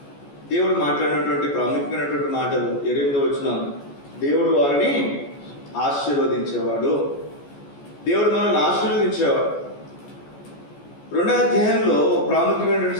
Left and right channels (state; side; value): late; right; 14 ms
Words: దేవుడు మాట్లాడినటువంటి ప్రాముఖ్యమైనటువంటి మాటలు 8వ వచనం, దేవుడు వారిని ఆశీర్వదించేవాడు. దేవుడు మనల్ని ఆశీర్వదించేవాడు. 2వ అధ్యాయంలో ప్రాముఖ్యమైనటువంటి